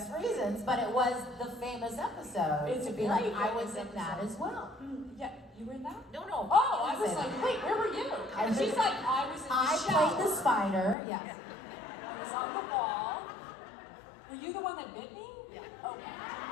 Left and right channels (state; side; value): drops out; right; at 11.0 s